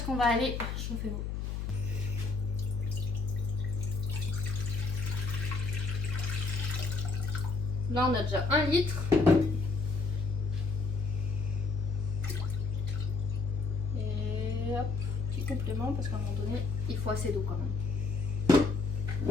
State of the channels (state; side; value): noise; left; hum, 2 dB below the sound